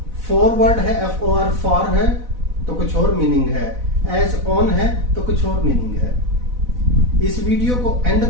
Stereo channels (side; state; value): left; late; 4.0 ms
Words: फॉरवर्ड है, FOR फॉर है तो कुछ और मीनिंग है, एज ऑन है तो कुछ और मीनिंग है। इस वीडियो को एंड